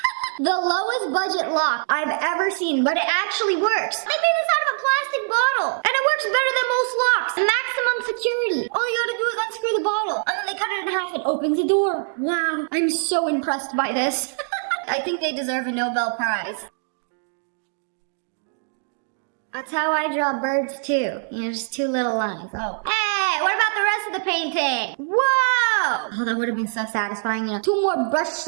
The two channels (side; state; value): left; silent; digital silence